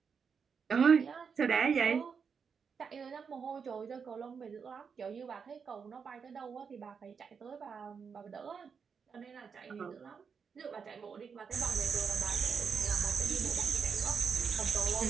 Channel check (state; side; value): quieter; left; 6.1 dB